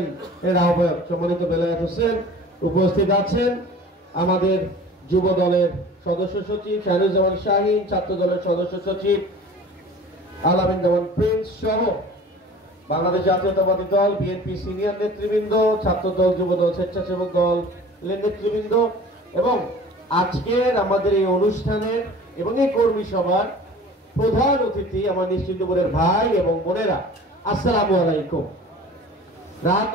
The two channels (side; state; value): both; normal; correlation 0.43